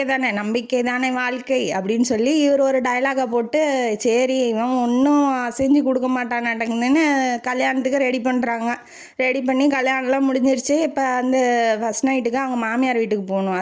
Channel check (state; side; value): identical; both; correlation 1.00